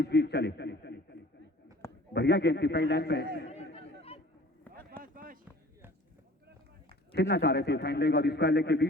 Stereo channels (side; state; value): both; normal; correlation 0.49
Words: बीच चले। बढ़िया गेंद थी, पहली लाइन पे खेलना चाह रहे थे, फाइन लेग और स्क्वायर लेग के